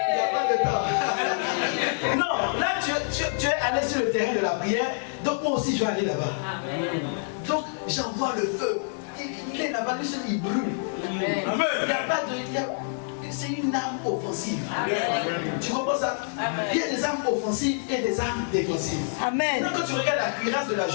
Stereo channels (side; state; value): right; silent; 56 dB below the other